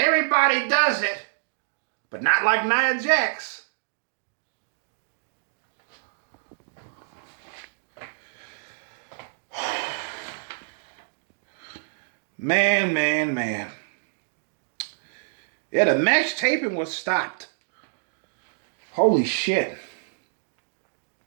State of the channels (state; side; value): silent; left; digital silence